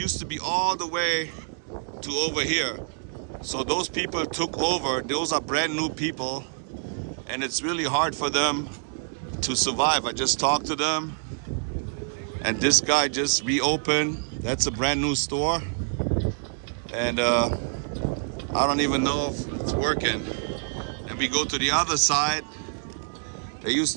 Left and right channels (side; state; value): left; silent; 60 dB below the other